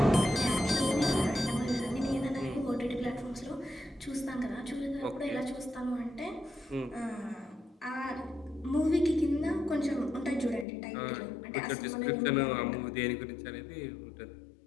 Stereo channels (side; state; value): right; drops out; at 10.7 s